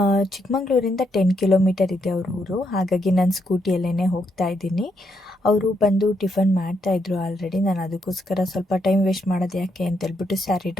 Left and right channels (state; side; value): normal; both; correlation 0.78